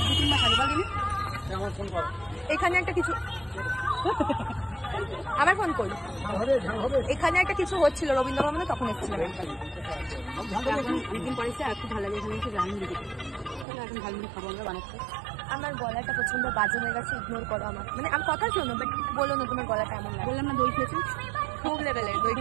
এখানে একটা কিছু, আমার ফোন করি, এখানে একটা কিছু হচ্ছিল রবীন্দ্র ভবনে, তখন এসেছিলাম অনেকদিন পরে। একটু ভালো লাগে, এখানে একটু ঝালমুড়ি, এখন ঝালমুড়ি খাবো আমরা বানাচ্ছি। আমার গলাটা প্রচন্ড বাজে হয়ে গেছে, ইগনোর করো আমার, মানে আমার কথা শোনো, বাট বলো না তোমার গলাটা এমন লাগে। বললাম না দই খেয়েছি, খুব লেভেলের দই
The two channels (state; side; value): drops out; left; at 13.7 s